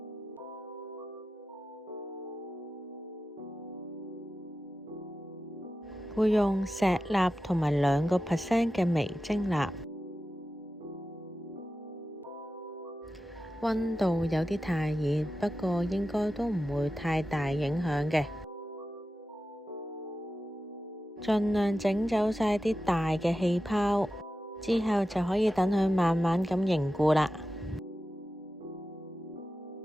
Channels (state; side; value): normal; both; correlation 0.93